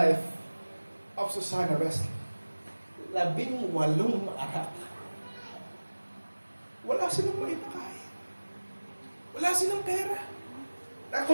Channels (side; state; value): both; inverted; correlation -1.00